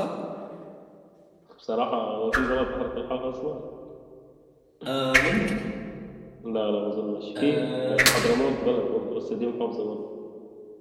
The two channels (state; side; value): identical; both; correlation 1.00